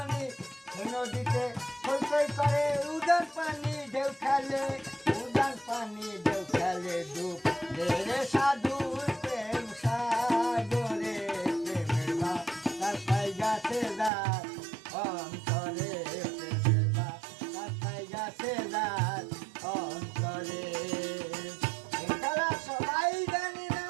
এই নদীতে হইতেই করে উদান পানি ঢেউ খেলে, উদান পানি ঢেউ খেলে। ডুব রে সাধুর প্রেম সাগরে, প্রেমের বাতাসাই গাছে যার অন্তরে, প্রেমের বাতাসাই গাছে যার অন্তরে। এই খেলা সবাই জানি না,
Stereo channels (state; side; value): drops out; left; at 14.1 s